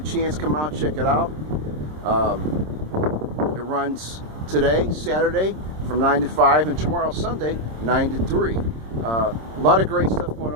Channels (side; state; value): left; late; 26 ms